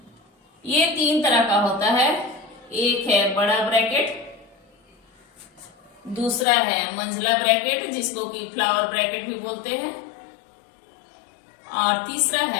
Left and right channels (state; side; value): drops out; right; at 6.5 s